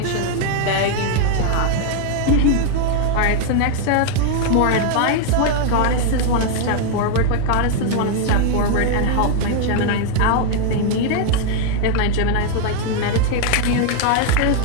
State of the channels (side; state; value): both; different; correlation 0.00